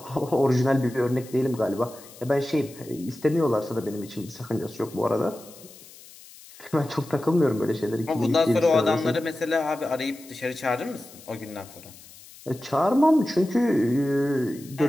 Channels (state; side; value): noise; left; hiss, 20 dB below the sound